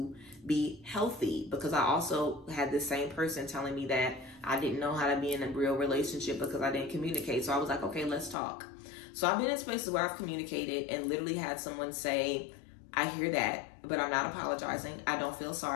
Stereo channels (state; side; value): drops out; right; at 8.3 s